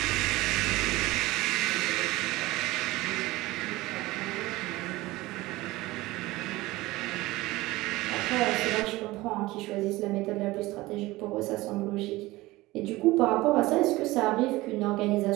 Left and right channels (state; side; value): quieter; left; 19.5 dB